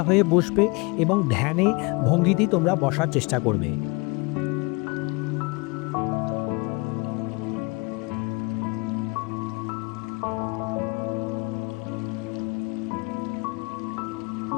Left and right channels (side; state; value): right; quieter; 27.4 dB